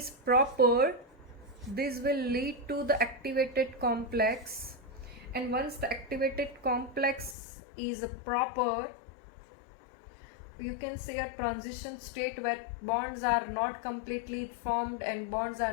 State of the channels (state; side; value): drops out; right; at 7.4 s